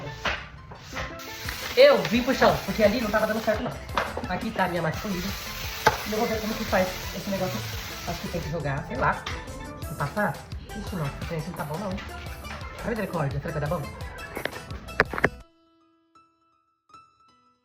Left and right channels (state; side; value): identical; both; correlation 1.00